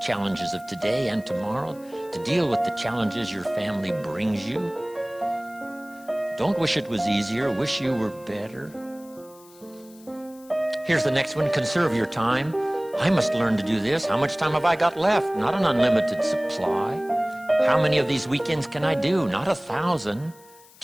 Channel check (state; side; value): noise; left; hiss, 25 dB below the sound